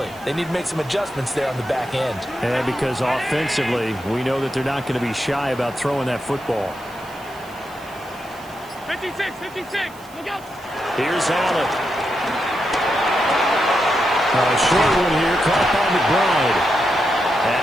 they need to make some adjustments there on the back end. And because offensively, we know that they're not going to be shy about throwing that football. 56, 56, look out. Here's Allen. A short one here, caught by McBride.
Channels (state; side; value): noise; right; hiss, 23 dB below the sound